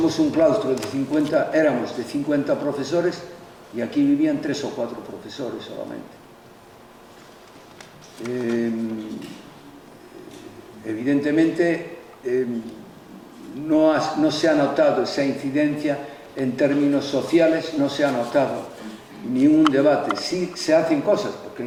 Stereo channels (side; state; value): both; identical; correlation 1.00